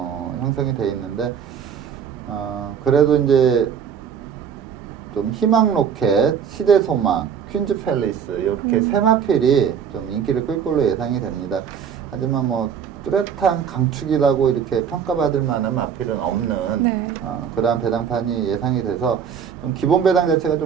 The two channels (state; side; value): quieter; left; 7.6 dB